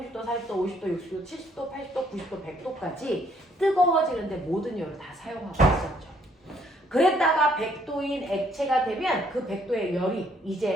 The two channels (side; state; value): both; normal; correlation 0.66